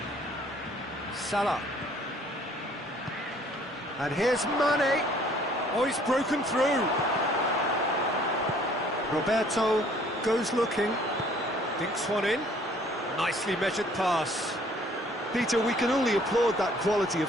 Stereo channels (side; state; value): both; normal; correlation 0.58